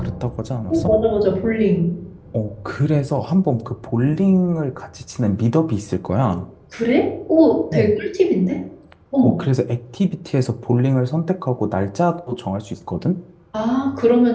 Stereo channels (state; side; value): identical; both; correlation 1.00